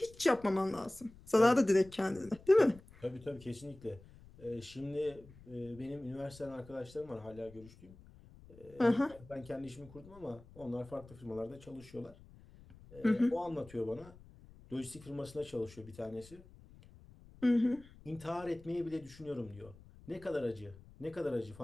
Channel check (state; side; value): noise; left; rumble, 21 dB below the sound